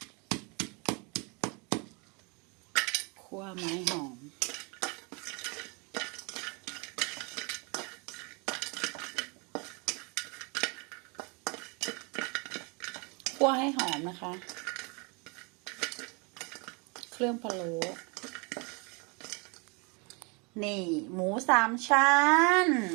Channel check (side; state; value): left; quieter; 31.7 dB